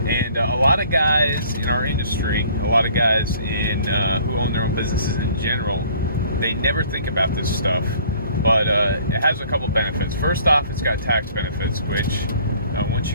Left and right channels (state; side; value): inverted; both; correlation -0.55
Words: And a lot of guys in our industry, a lot of guys in who own their own businesses in general, they never think about this stuff. But it has a couple benefits. First off, it's got tax benefits, which once